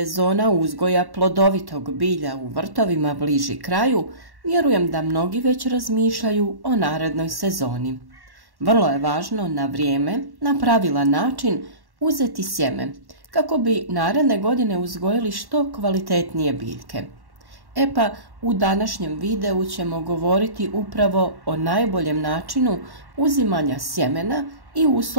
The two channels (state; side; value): late; left; 1.1 ms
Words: uzgoja plodovitog bilja u vrtovima bliži kraju, vjerujem da mnogi već razmišljaju o narednoj sezoni. Vrlo je važno na vrijeme, na pravilan način uzeti sjeme, kako bi naredne godine uzgojili što kvalitetnije biljke. E pa, u današnjem videu ćemo govoriti upravo o najboljem načinu uzimanja sjemena i